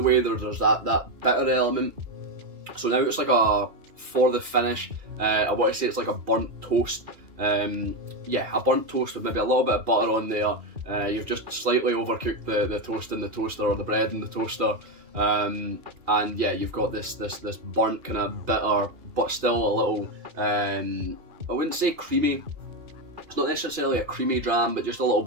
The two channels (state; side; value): late; left; 2.4 ms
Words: way, there's that bitter element. So now it's like for the finish, I want to say it's like a burnt toast Yeah, a burnt toast with maybe a little bit of butter on there. You've just slightly overcooked the toast in the toaster, or the bread in the toaster, and yeah, you've got this burnt kind of bitter, but still a little, I wouldn't say creamy. It's not necessarily a creamy dram, but just a little